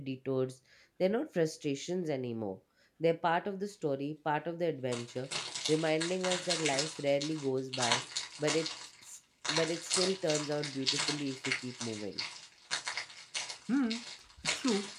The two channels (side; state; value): both; identical; correlation 1.00